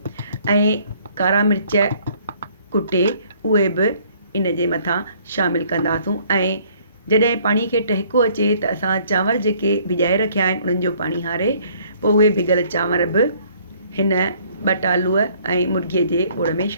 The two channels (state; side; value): inverted; both; correlation -0.60